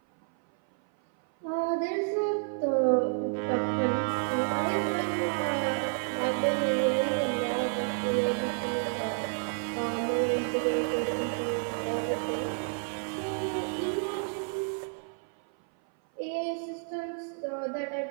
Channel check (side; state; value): left; silent; 57 dB below the other